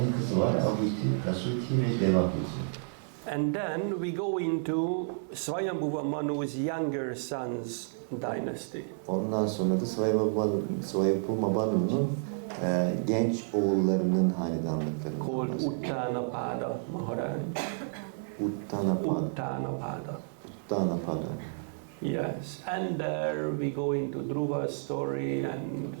kızı var, Ahuti, Prasuti ve Devahuti. And then we go into Svayambhuva Manu's younger son's dynasty. Ondan sonra da Svayambhuva Manu'nun genç oğullarının hanedanlıkları. Called Uttanapada Maharaj. Uttanapada. Uttanapada. Yes, and there we go into Dhruva's story and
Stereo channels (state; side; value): silent; left; digital silence